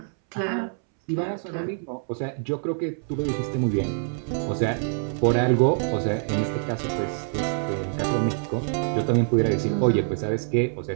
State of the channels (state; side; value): silent; left; 61 dB below the other